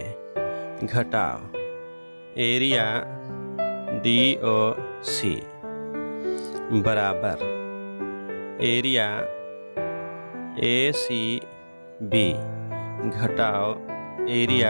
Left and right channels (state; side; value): inverted; both; correlation -1.00